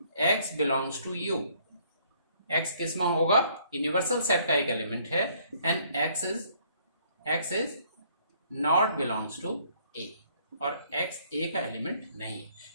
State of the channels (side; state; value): both; inverted; correlation -0.64